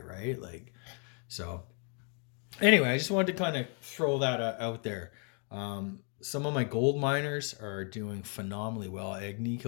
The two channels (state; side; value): quieter; right; 38.9 dB